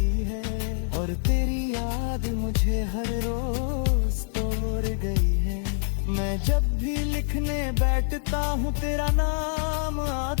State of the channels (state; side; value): silent; right; digital silence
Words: है, और तेरी याद मुझे हर रोज तोड़ गई है। मैं जब भी लिखने बैठता हूँ तेरा नाम